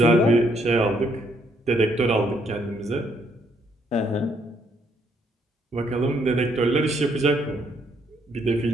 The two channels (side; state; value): both; normal; correlation 0.71